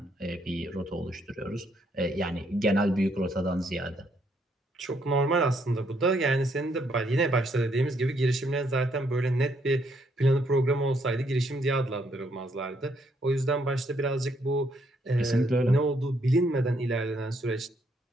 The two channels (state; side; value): normal; both; correlation 0.72